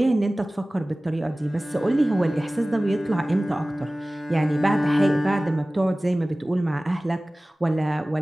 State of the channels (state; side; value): normal; both; correlation 0.98